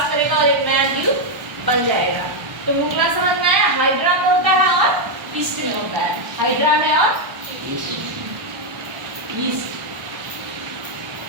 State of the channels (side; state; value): left; late; 1.1 ms